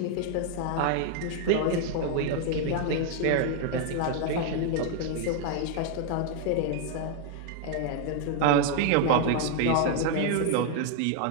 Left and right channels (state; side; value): different; both; correlation 0.00